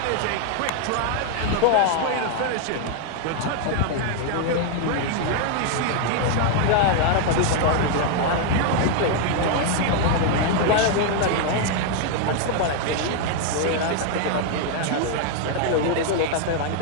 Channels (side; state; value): both; different; correlation 0.00